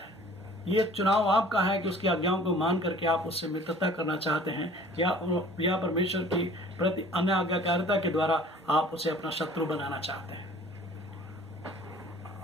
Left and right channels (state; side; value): normal; both; correlation 0.49